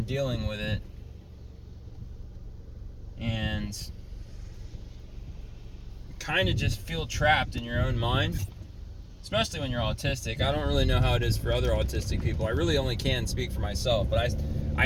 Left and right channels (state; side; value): identical; both; correlation 1.00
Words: dealing with it, and kind of just feel trapped in your own mind, especially when you're autistic. I don't really know how it is for other autistic people. I really only can speak for myself, but I